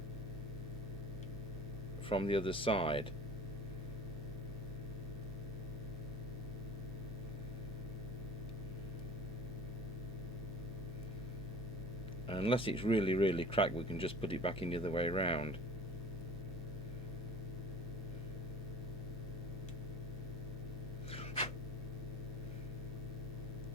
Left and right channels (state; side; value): normal; both; correlation 0.43